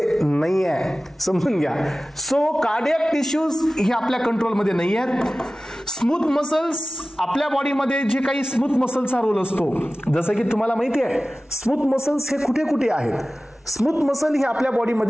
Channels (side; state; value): both; normal; correlation 0.96